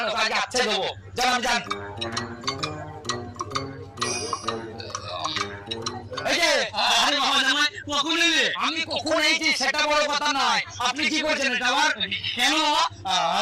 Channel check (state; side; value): identical; both; correlation 1.00